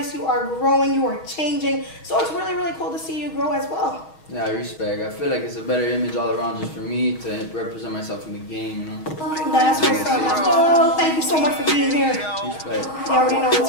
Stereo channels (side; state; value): right; late; 6.3 ms